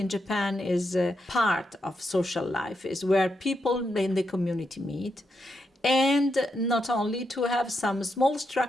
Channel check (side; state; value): both; normal; correlation 0.83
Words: Japan is a part of social life, is where people in the community meet. And not only to have some small